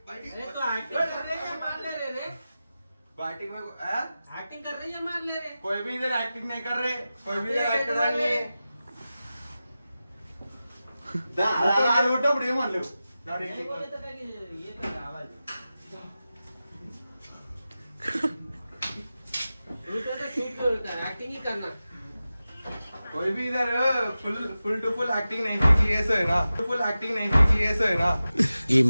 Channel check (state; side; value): inverted; both; correlation -0.94